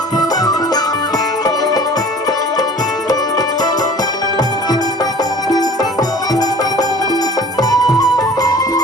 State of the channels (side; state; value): both; normal; correlation 0.45